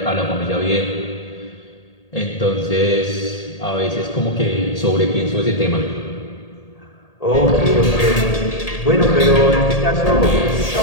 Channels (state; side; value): late; right; 1.8 ms